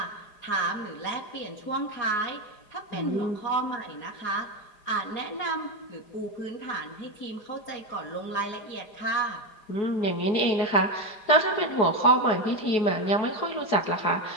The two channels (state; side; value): late; right; 4.9 ms